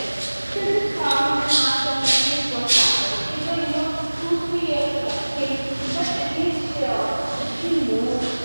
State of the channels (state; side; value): inverted; both; correlation -1.00